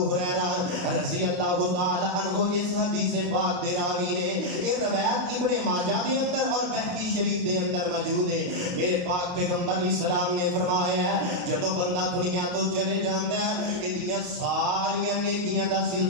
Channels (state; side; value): late; left; 28 ms